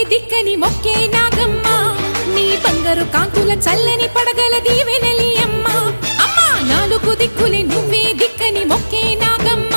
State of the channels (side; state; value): both; inverted; correlation -1.00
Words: దిక్కని మొక్కే నాగమ్మ నీ బంగారు కాంతుల చల్లని పడగల దీవెనలి అమ్మ అమ్మా నాలుగు దిక్కులే నువ్వే దిక్కని మొక్కే నాగమ్మ